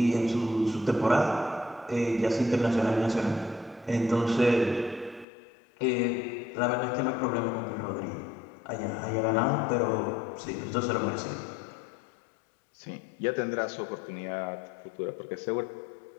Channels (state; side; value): drops out; right; at 5.2 s